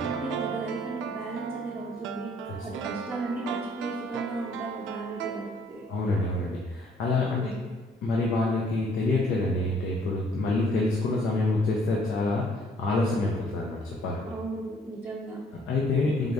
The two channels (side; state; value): both; normal; correlation 0.62